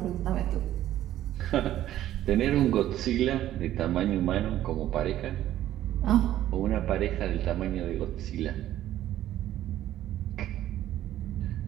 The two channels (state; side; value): quieter; left; 12.9 dB